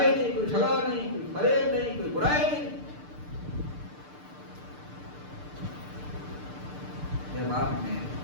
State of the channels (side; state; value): left; late; 6.7 ms